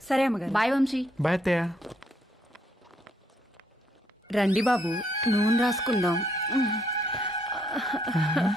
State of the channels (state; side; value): normal; both; correlation 0.72